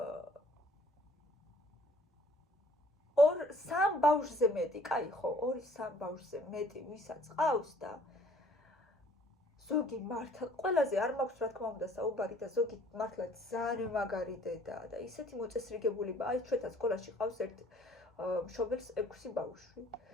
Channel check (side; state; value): both; normal; correlation 0.57